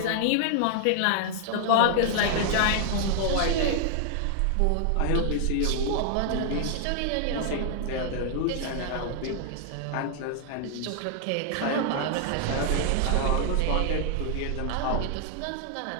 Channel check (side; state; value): both; different; correlation 0.00